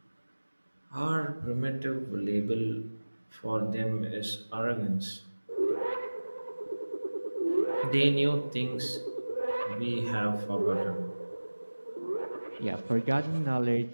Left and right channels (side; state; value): both; inverted; correlation -1.00